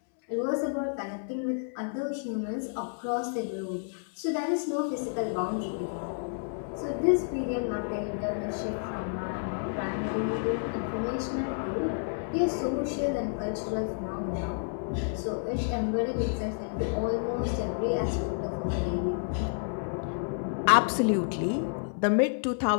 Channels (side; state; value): right; silent; digital silence